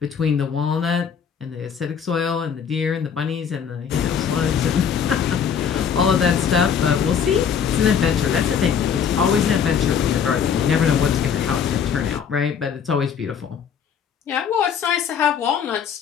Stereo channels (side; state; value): right; quieter; 7.4 dB